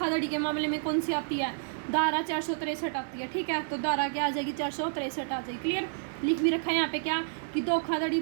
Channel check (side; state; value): left; silent; digital silence